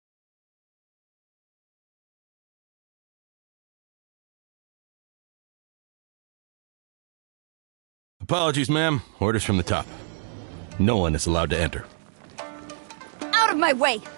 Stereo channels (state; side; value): silent; left; digital silence